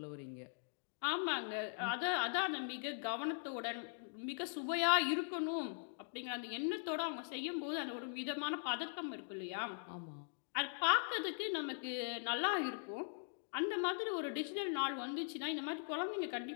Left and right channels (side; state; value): right; silent; digital silence